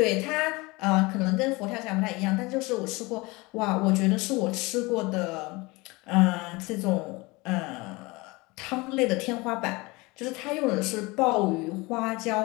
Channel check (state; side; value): quieter; right; 24.1 dB